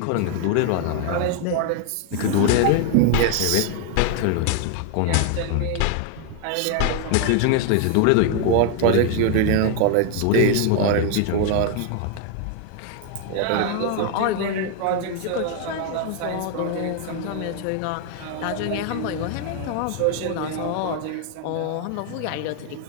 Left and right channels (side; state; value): both; different; correlation 0.00